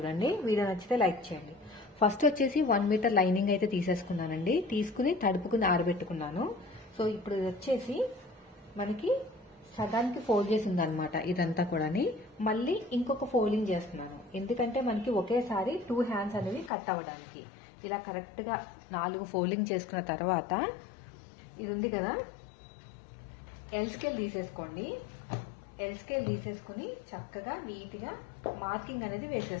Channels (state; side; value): drops out; right; at 16.7 s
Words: వీడియో నచ్చితే లైక్ చేయండి. ఫస్ట్ వచ్చేసి 1 మీటర్ లైనింగ్ అయితే తీసేసుకున్నానండి. తీసుకుని తడుపుకుని ఆరబెట్టుకున్నాను. సో ఇప్పుడు ఇది వచ్చేసి మనకి సగానికి ఫోల్డ్ చేసి ఉందన్నమాట. ఇదంతా కూడా మళ్ళీ ఇంకొక ఫోల్డింగ్ చేస్తున్నాను. ఎందుకంటే మనకి ఒకేసారి 2 హ్యాండ్స్ అనేవి కట్ అవ్వడానికి. ఇలా కరెక్ట్ గా 4 ఫోల్డింగ్ చేసుకున్న తర్వాత ఇది ఉంది కదా, ఎల్ స్కేల్ తీసేసుకోండి. ఎల్ స్కేల్ తీసేసుకుని చక్కగా నీట్ గా మార్కింగ్ అనేది